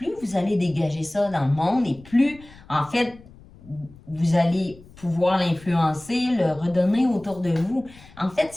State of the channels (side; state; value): left; noise; rumble, 22 dB below the sound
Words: vous allez dégager ça dans le monde et plus, en fait, vous allez pouvoir l'influencer, le redonner autour de vous. En fait,